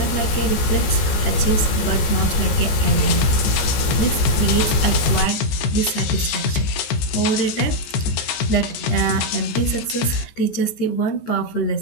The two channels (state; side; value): late; right; 14 ms